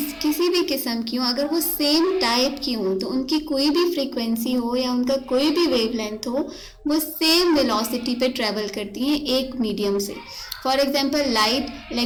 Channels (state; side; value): identical; both; correlation 1.00